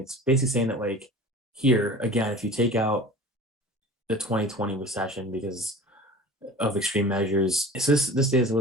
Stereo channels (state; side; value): normal; both; correlation 0.39